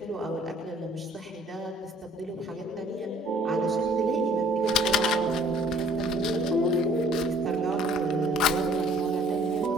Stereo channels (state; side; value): normal; both; correlation 0.56